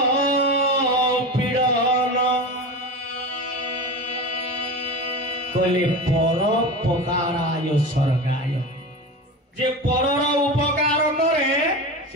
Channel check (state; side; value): normal; both; correlation 0.26